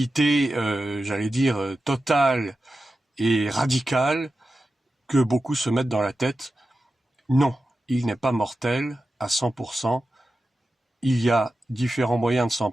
j'allais dire, totale et radicale que beaucoup se mettent dans la tête. Non, il n'est pas mortel à 100%. Il y a différents moyens de s'en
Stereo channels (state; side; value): normal; both; correlation 0.92